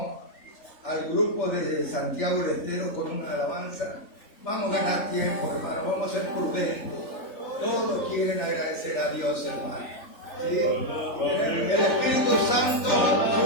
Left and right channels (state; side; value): late; right; 3.7 ms